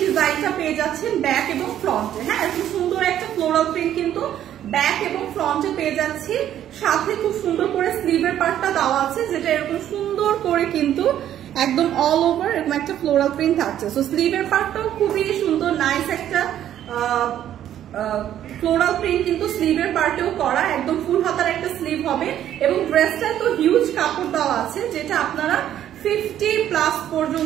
ডিজাইনটা পেয়ে যাচ্ছেন ব্যাক এবং ফ্রন্টে। হ্যাঁ, এত সুন্দর একটা ফ্লোরাল প্রিন্ট কিন্তু ব্যাক এবং ফ্রন্টে পেয়ে যাচ্ছি, সাথে খুব সুন্দর করে স্লিভের পার্টটা দেওয়া আছে, যেটা এরকম সুন্দর করে কিন্তু একদম অল ওভার এরকম একটা ফ্লোরাল প্রিন্ট থাকছে। সো স্লিভের পার্টটাও খুবই সুন্দর, নাইস একটা ফ্লোরাল প্রিন্ট কিন্তু স্লিভের পার্টেও করা, একদম ফুল হাতার একটা স্লিভ হবে এবং ড্রেসটা তো হিউজ কাপড় দেওয়া আছে, যেটা আপনারা 50+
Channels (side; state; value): left; quieter; 11.1 dB